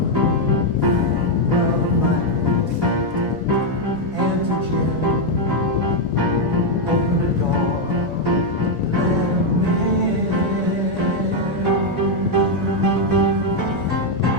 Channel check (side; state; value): both; normal; correlation 0.01